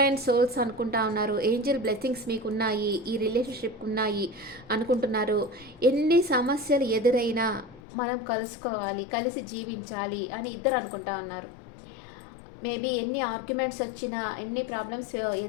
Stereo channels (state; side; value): drops out; right; at 7.8 s